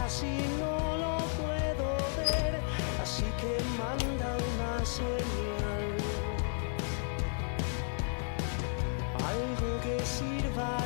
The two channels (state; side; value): silent; right; 56 dB below the other